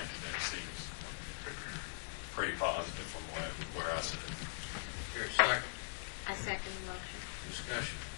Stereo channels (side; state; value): right; silent; 50 dB below the other